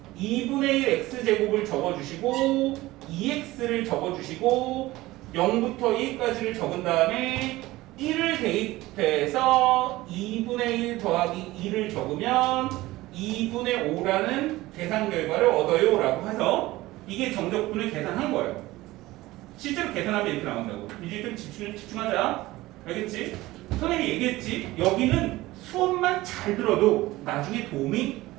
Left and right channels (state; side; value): quieter; left; 18.3 dB